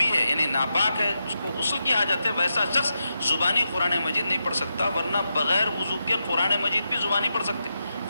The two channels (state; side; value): inverted; both; correlation -0.87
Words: ہے یعنی ناپاک ہے، اس کو غسل کی حاجت ہے، ویسا شخص زبانی قرآن مجید نہیں پڑھ سکتا، ورنہ بغیر وضو کے قرآن مجید بھی زبانی پڑھ سکتے.